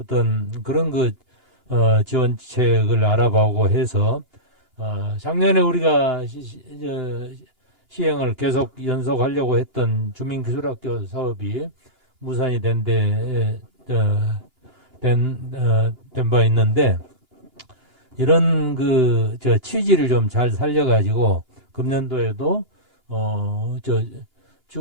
그런 지원책을 알아보고 해서 작년에 우리가 시행을 계속 연속하려고 했던 주민기술학교 사업이 무산이 된 바 있는데 이런 취지를 좀 잘 살려가지고 금년도에도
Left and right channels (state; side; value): late; left; 2.9 ms